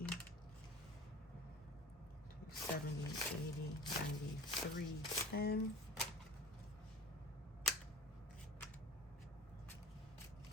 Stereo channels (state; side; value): normal; both; correlation 0.39